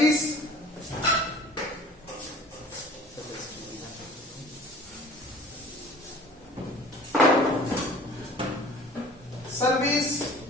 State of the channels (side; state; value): both; normal; correlation 0.46